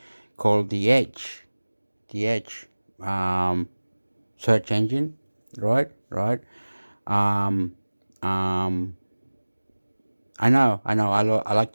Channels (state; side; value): inverted; both; correlation -1.00